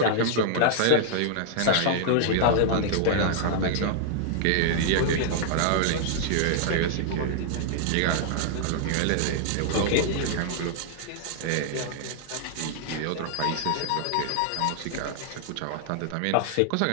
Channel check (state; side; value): different; both; correlation -0.01